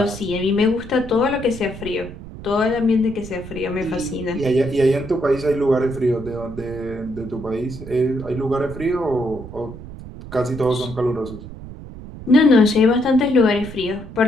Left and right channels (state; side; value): noise; right; rumble, 13 dB below the sound